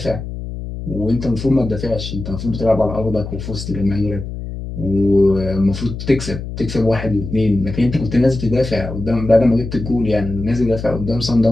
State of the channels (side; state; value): left; noise; hum, 8 dB below the sound